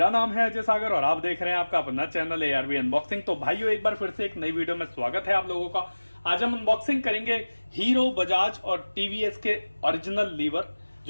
नाम है अजय सागर और आप देख रहे हैं आपका अपना चैनल ARV अनबॉक्सिंग। तो भाइयों, एक बार फिर से एक नई वीडियो में स्वागत है आप लोगों का। आज हम अनबॉक्सिंग करेंगे हीरो, बजाज और टीवीएस के ओरिजिनल लीवर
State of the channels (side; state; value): both; inverted; correlation -1.00